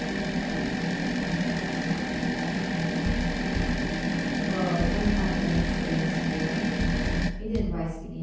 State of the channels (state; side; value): identical; both; correlation 1.00